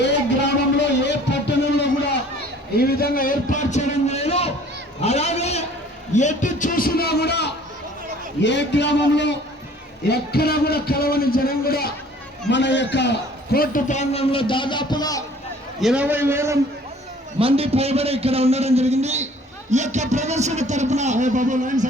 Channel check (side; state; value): both; normal; correlation 0.53